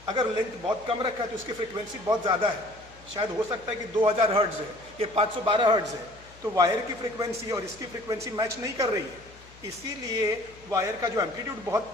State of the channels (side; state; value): left; noise; hum, 23 dB below the sound